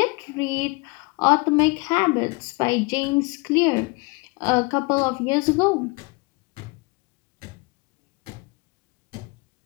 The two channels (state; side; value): quieter; right; 27.2 dB